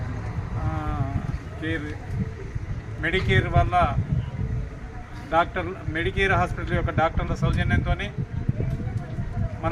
మెడికేర్ వల్ల మెడికేర్ హాస్పిటల్ యొక్క డాక్టర్ల సౌజన్యంతో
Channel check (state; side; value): identical; both; correlation 1.00